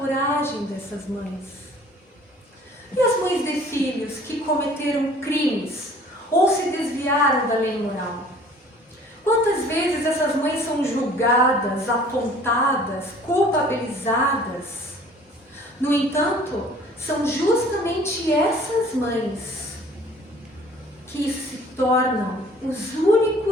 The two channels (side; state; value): both; normal; correlation 0.52